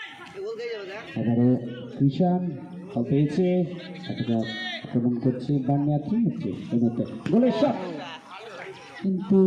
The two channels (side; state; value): both; identical; correlation 1.00